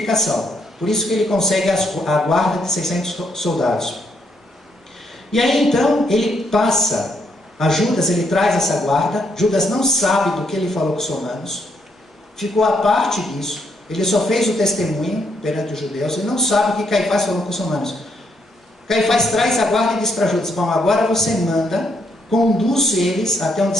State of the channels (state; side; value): normal; both; correlation 0.75